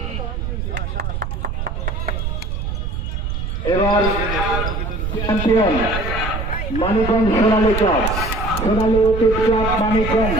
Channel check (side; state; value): right; noise; rumble, 3 dB below the sound